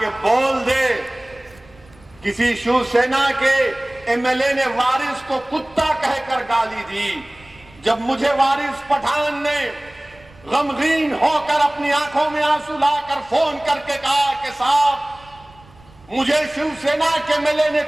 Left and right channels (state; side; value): noise; right; rumble, 26 dB below the sound